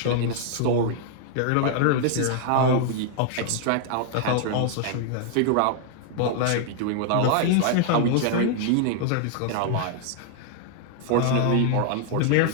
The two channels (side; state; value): both; different; correlation -0.01